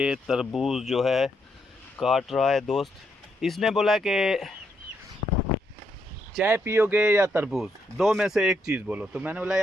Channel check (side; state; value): both; normal; correlation 0.77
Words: तरबूज जो है काट रहा है दोस्त। इसने बोला कि चाय पियोगे या तरबूज, दो में से एक चीज़ बोलो। तो मैंने बोला